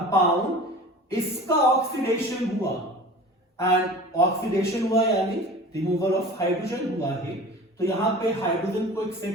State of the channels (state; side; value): normal; both; correlation 0.39